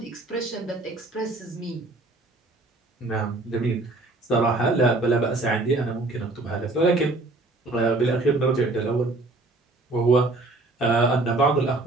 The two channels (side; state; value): left; quieter; 3.0 dB